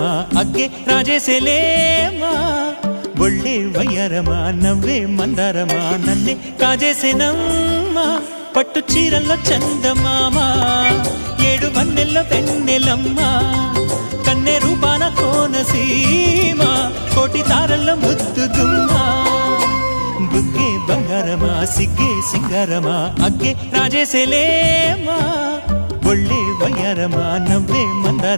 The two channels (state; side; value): inverted; both; correlation -1.00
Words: అగ్గే రాజేసేలేమా ఒళ్ళే వయ్యారమా నవ్వే మందారమా నన్నే కాజేసేనమ్మా పట్టు చీరల్లో చందమామా ఏడు వన్నెల్లో పెన్నెలమ్మా కన్నె రూపాన కోనసీమ కోటి తారల్లో ముద్దుదుమ్మా బుగ్గే బంగారమా సిగ్గే సింగారమా అగ్గే రాజేసేలేమా ఒళ్ళే వయ్యారమా నవ్వే